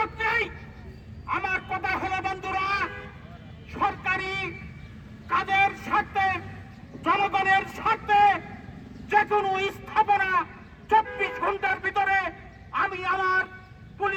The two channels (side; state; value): both; identical; correlation 1.00